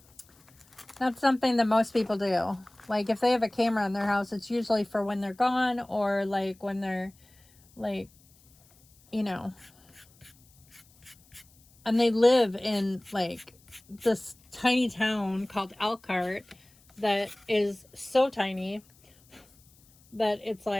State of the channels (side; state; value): left; noise; hiss, 30 dB below the sound